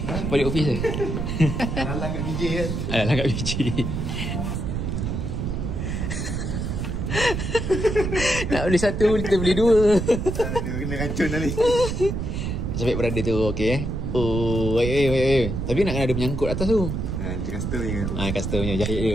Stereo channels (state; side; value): noise; right; rumble, 3 dB below the sound